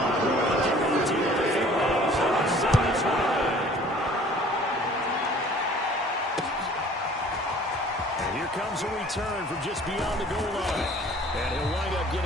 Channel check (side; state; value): both; normal; correlation 0.51